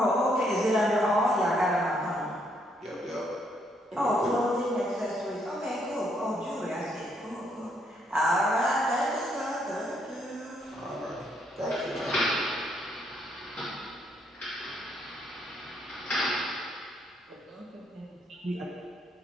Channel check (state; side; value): normal; both; correlation 0.72